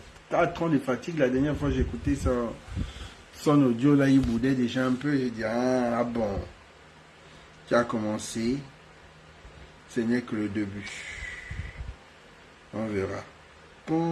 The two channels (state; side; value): identical; both; correlation 1.00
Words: 4 ans de fatigue. La dernière fois j'ai écouté son audio, là, il boudait déjà un peu. J'ai dit, ah bon, tu as commencé. Ce n'est que le début. On verra.